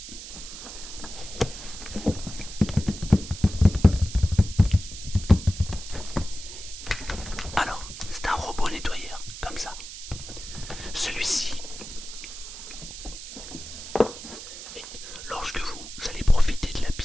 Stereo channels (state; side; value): noise; right; hiss, 11 dB below the sound